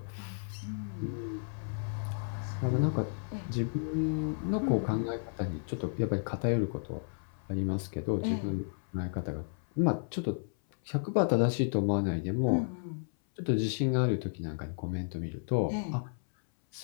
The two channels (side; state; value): right; silent; 56 dB below the other